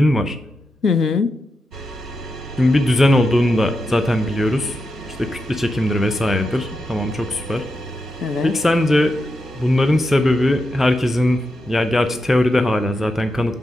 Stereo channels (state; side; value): normal; both; correlation 0.87